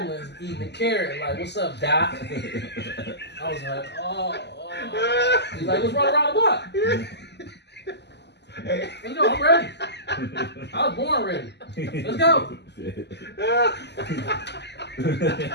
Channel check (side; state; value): right; late; 0.50 ms